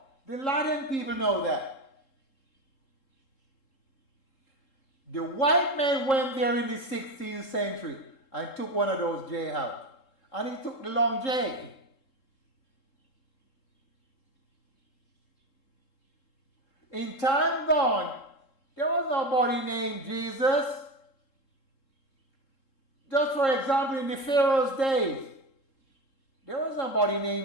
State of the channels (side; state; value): right; late; 3.7 ms